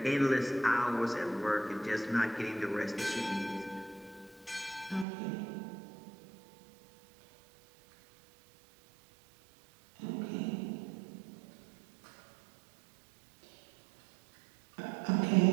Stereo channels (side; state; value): left; drops out; at 5.1 s